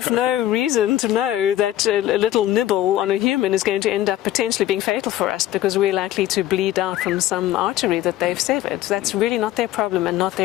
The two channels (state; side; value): quieter; right; 13.6 dB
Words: no reason to know that a little nibble on a human is going to end up potentially being fatal for us because we're likely to bleed out from some artery that they've severed. That's really not their problem and not